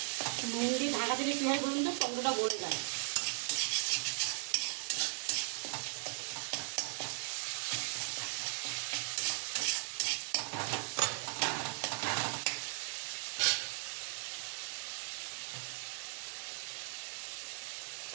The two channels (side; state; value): left; silent; digital silence